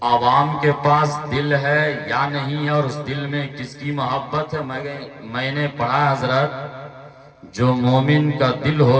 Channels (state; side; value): identical; both; correlation 1.00